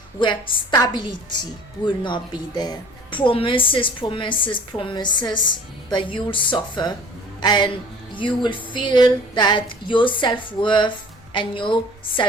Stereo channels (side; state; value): both; normal; correlation 0.48